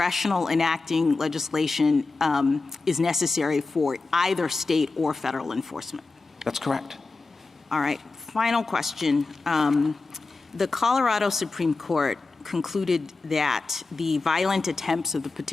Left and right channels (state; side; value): quieter; right; 3.7 dB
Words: enacting legislation is necessary for either state or federal enforcement. That's correct. All right. Final question. The Colorado Supreme Court concluded that the violent attempts of the